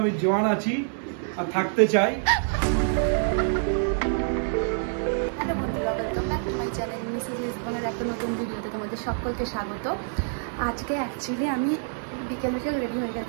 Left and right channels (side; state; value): left; silent; 61 dB below the other